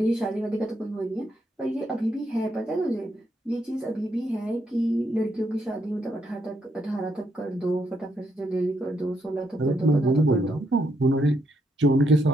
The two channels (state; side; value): normal; both; correlation 0.77